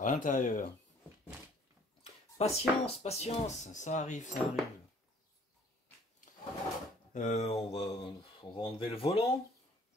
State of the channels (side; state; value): both; normal; correlation 0.57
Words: l'intérieur. Patience, patience, ça arrive, ça arrive. On va enlever le volant.